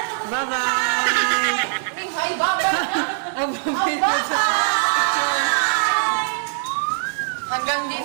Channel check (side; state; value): left; silent; digital silence